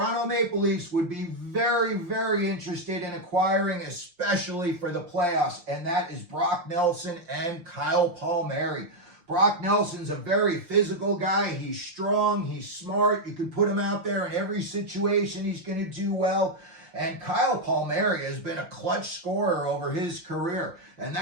Maple Leafs would be very, very interested in acquiring, especially for the playoffs, and that is Brock Nelson and Kyle Palmieri. Brock Nelson's a very physical guy. He's strong. He's smart. You can put him out there in every situation. He's going to do well. And Kyle Palmieri has been a clutch scorer over his career. And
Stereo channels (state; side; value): late; left; 5.7 ms